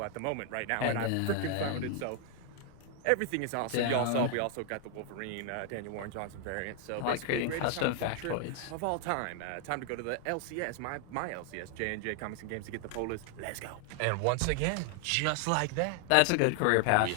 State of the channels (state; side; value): different; both; correlation 0.00